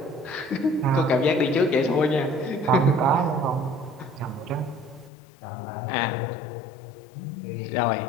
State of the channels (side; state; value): right; drops out; at 5.1 s